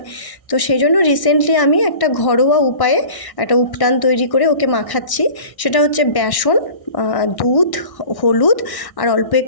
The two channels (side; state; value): right; late; 1.6 ms